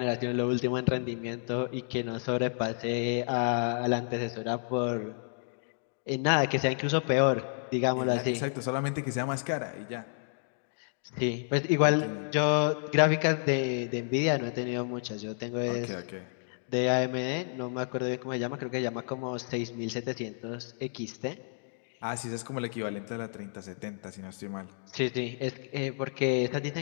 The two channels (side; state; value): right; silent; digital silence